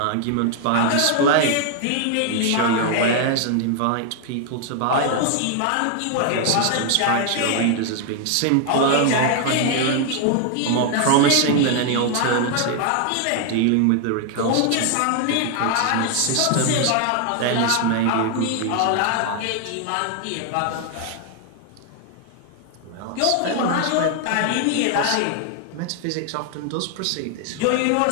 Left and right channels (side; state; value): both; different; correlation 0.00